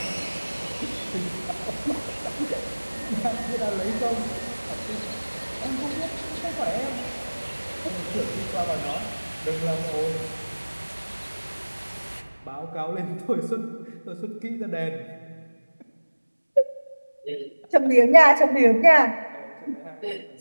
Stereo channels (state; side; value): inverted; both; correlation -1.00